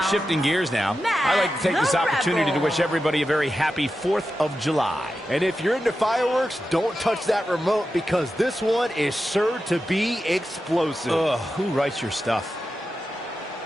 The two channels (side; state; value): both; normal; correlation 0.91